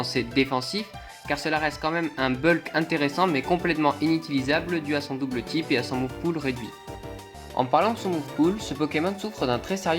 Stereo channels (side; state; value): both; identical; correlation 1.00